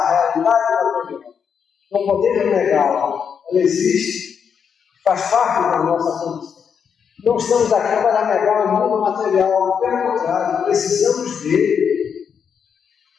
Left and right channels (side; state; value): right; quieter; 7.0 dB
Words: realidade da vida. Não podemos negá-la. Ela existe, faz parte da nossa condição. Não estamos aqui para negar o mundo material, pelo contrário, precisamos dele.